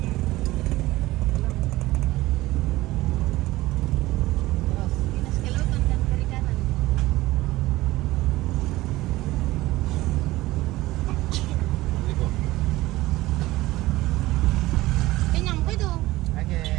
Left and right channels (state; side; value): quieter; left; 18.0 dB